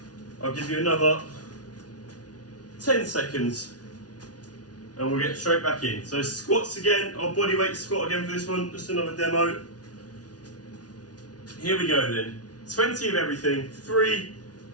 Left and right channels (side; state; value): right; late; 0.69 ms